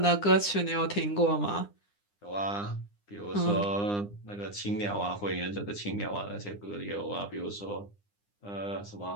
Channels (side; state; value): right; late; 9.8 ms